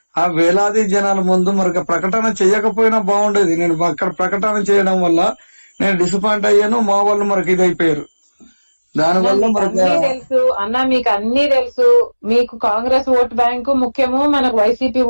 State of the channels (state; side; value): inverted; both; correlation -1.00